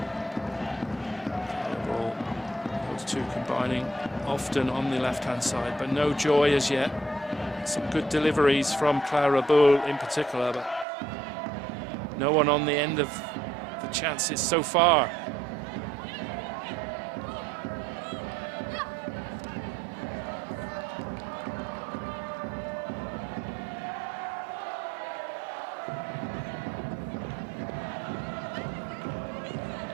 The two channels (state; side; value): drops out; left; at 10.9 s